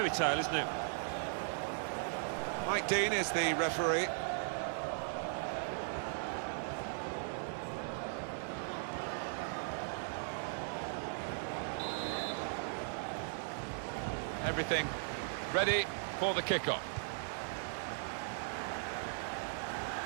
tale, isn't it? Mike Dean is the referee. Everything ready for the kickoff.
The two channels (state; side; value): silent; left; digital silence